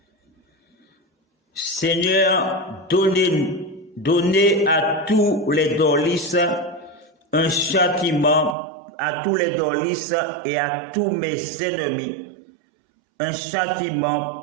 Seigneur, donnez à tous les dolistes un châtiment, à tous les dolistes et à tous mes ennemis, un châtiment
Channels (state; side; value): drops out; left; at 8.6 s